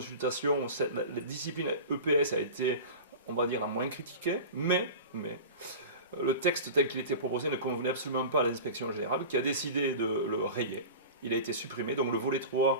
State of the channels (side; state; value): both; inverted; correlation -0.32